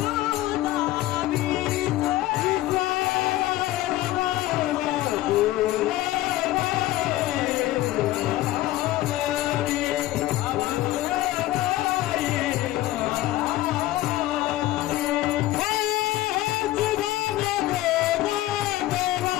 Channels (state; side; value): quieter; right; 15.8 dB